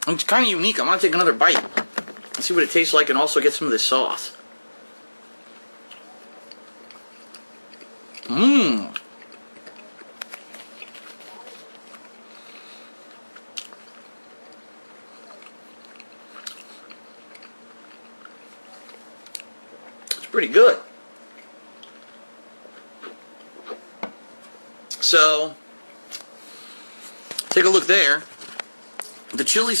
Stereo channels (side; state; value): both; inverted; correlation -1.00